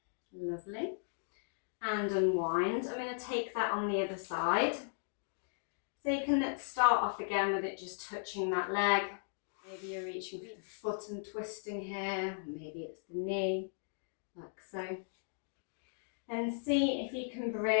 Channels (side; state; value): right; silent; digital silence